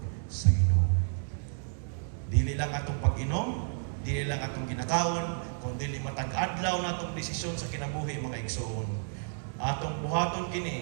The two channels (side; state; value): left; silent; digital silence